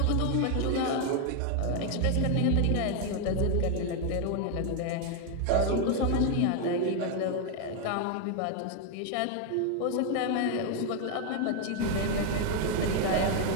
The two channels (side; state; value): both; different; correlation 0.01